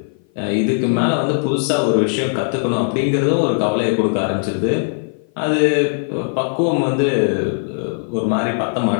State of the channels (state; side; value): silent; right; 56 dB below the other